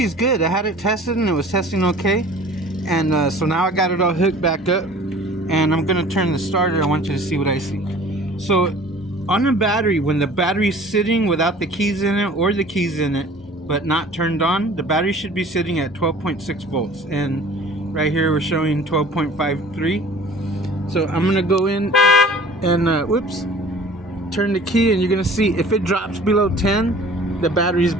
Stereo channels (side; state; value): both; normal; correlation 0.47